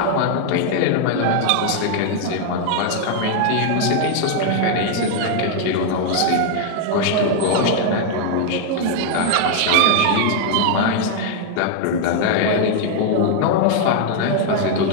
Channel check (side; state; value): both; different; correlation 0.00